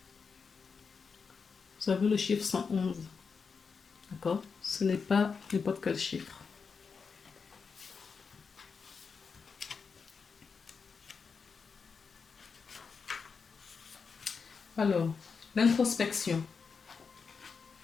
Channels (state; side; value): quieter; right; 5.4 dB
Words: Vous avez le chiffre 111. D'accord? Ce n'est pas n'importe quel chiffre. Alors, l'introspection.